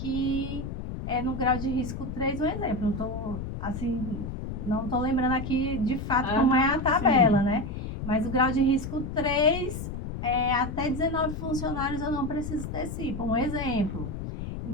é no grau de risco 3, um exemplo. Não tô lembrando aqui de fato como é a tabela, né? Mas o grau de risco 3, até 19 funcionários eu não preciso ter CIPA, um exemplo.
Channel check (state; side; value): noise; left; rumble, 6 dB below the sound